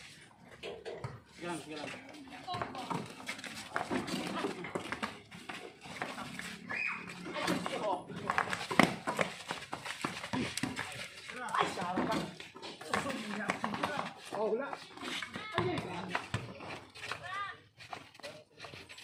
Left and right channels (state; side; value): identical; both; correlation 1.00